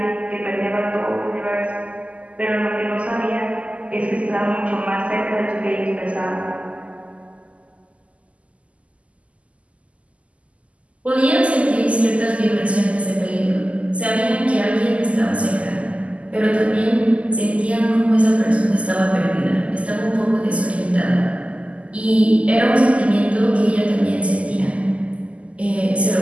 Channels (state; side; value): late; left; 0.063 ms